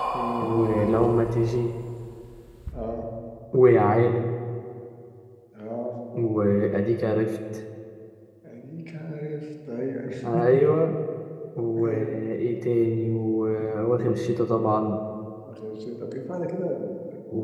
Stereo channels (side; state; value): both; identical; correlation 1.00